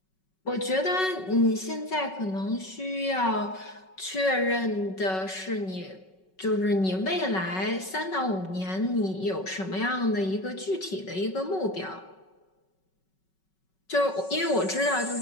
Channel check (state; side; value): late; right; 5.3 ms